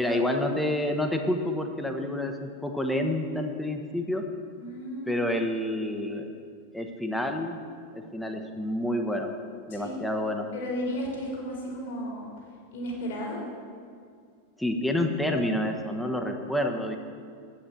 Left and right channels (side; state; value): both; normal; correlation 0.50